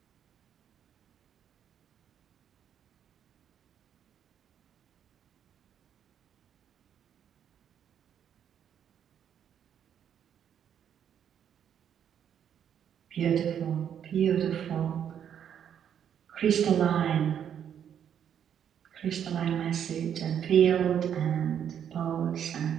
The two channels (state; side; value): quieter; left; 8.9 dB